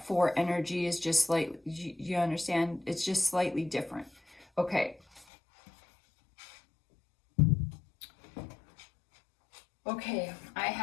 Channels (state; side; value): drops out; right; at 5.2 s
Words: 4 energy is just slightly, you understand? It's just slightly different. Okay. Okay, I